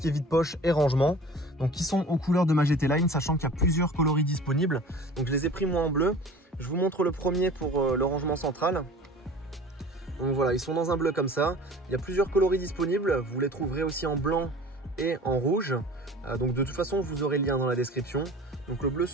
est vide-poche et rangement, donc qui sont aux couleurs de ma GT Line, sachant qu'il y a plusieurs coloris disponibles. Donc je les ai pris moi en bleu. Je vous montre le premier pour le rangement central. Donc voilà, ils sont dans un bleu comme ça. Il y a plusieurs coloris disponibles. Vous les trouverez aussi en blanc et en rouge. Donc de toute façon, vous aurez le lien dans la description. Donc le bleu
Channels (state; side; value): normal; both; correlation 0.42